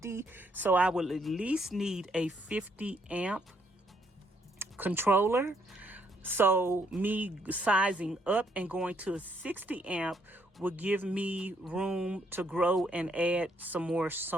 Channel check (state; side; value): normal; both; correlation 0.71